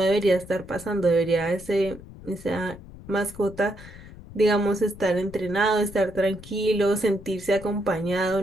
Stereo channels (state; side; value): noise; left; rumble, 17 dB below the sound